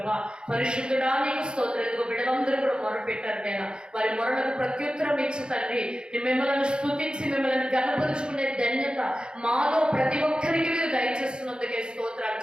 పరిశుద్ధుడా నీకు స్తోత్రాలు. ఇదిగో బిడ్డలందరూ కూడా మొరపెట్టారు నాయన. వారి మొరలకు ప్రత్యుత్తరం ఇచ్చి తండ్రి మిమ్మల్ని స్తుతించి మిమ్మల్ని గణపరుచుకునే ధన్యత మాలో ప్రతి ఒక్కరికి మీరు దయచేస్తున్నందుకే స్తోత్రాలు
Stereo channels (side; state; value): left; late; 0.050 ms